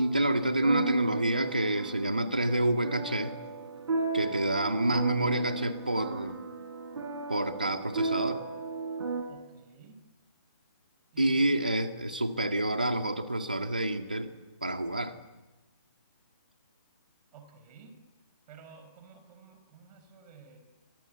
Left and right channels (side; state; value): both; inverted; correlation -0.78